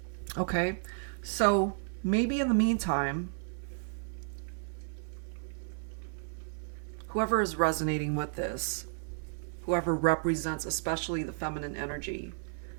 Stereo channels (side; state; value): left; silent; 56 dB below the other